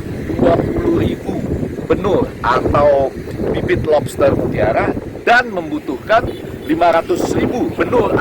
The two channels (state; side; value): identical; both; correlation 1.00